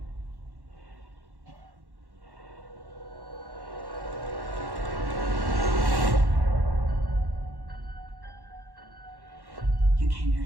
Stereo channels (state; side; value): late; left; 1.1 ms